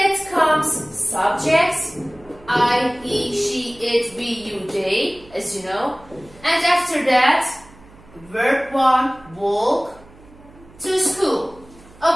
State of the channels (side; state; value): right; noise; hum, 24 dB below the sound